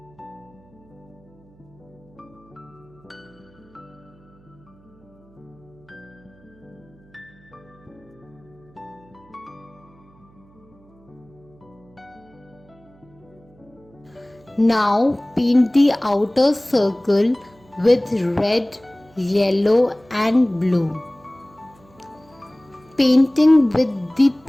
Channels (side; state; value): right; noise; hum, 28 dB below the sound